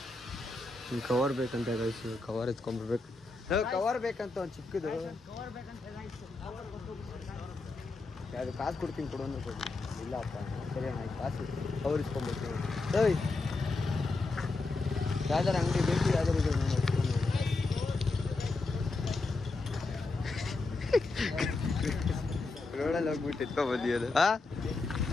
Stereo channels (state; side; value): quieter; right; 3.5 dB